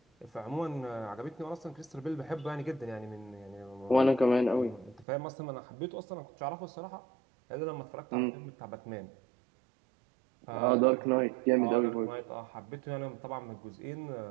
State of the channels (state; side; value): drops out; left; at 5.1 s